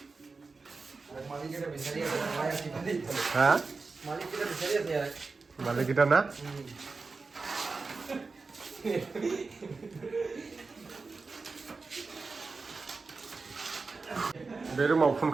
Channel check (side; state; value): left; quieter; 4.1 dB